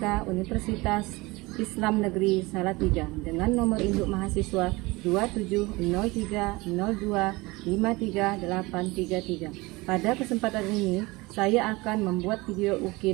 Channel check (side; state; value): left; quieter; 22.9 dB